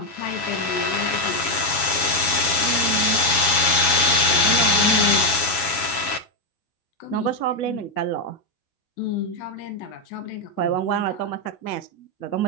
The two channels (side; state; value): right; late; 7.2 ms